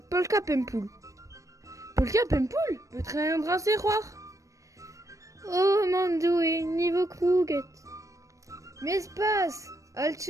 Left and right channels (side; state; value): left; late; 0.16 ms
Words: polka pempoul. Polka pempoul, petra an dras e c'hoar. Oh, mandoue, niveau krouget. Mes pas, al